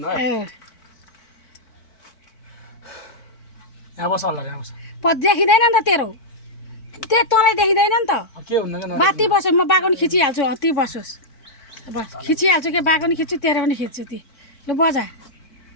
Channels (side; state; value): right; late; 4.5 ms